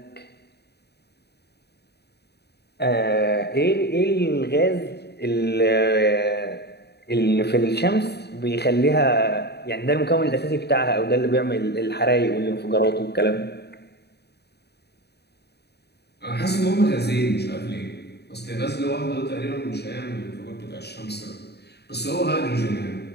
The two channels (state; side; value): late; right; 0.48 ms